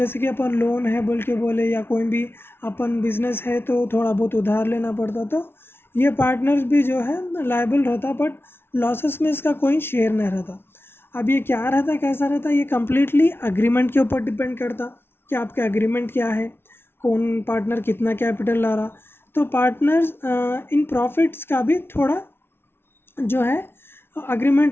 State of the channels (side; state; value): right; late; 0.11 ms